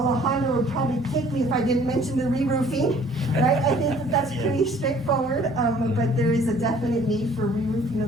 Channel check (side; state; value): both; normal; correlation 0.55